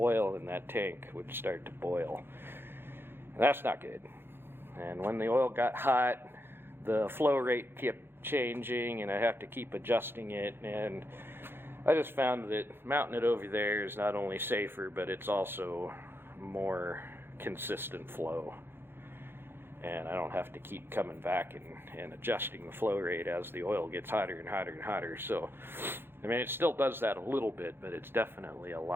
in that tank would start to boil, and that's not good. And when the oil got hot, the flow rate kept changing, and I have to keep adjusting it, and I just found that mounting it over there is not only safer, but it's also more consistent flow, and I don't have to keep coming back and adjusting the flow rate as the oil gets hotter and hotter and hotter. So I mean, it still does that a little bit, but it's definitely a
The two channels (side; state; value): left; late; 0.10 ms